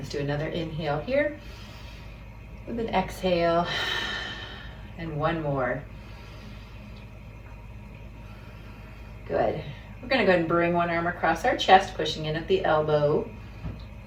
do another inhale here with an exhale. And one more. Good. We're going to go ahead and bring one arm across our chest, pushing in at the elbow.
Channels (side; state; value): both; identical; correlation 1.00